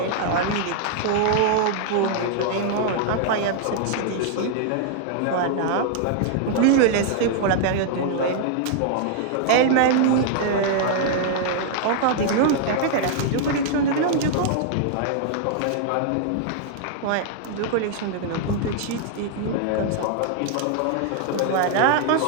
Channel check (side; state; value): both; different; correlation -0.01